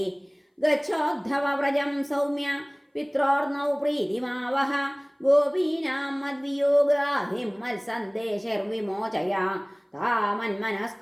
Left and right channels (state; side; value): identical; both; correlation 1.00